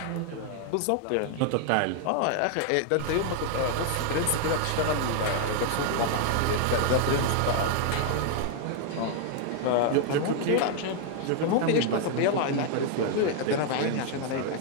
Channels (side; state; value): both; different; correlation 0.00